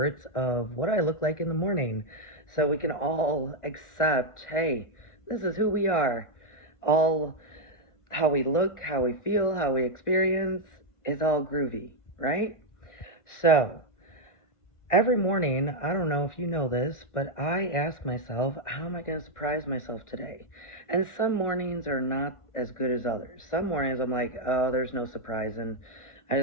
of what I look like in the morning so we can all accept hey, this is who we are. All how we look, how we feel, how we experience is all groovy, right? So, every morning, I don't know if you know this, but I ask myself, how am I going to surprise myself today? And some mornings are not as good as others. Some mornings I'm like, oh, there's no surprising. I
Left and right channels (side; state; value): right; late; 1.4 ms